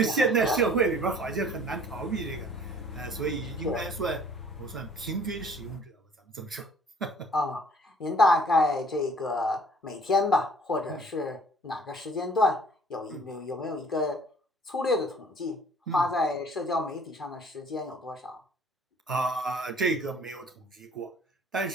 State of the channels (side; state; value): both; normal; correlation 0.55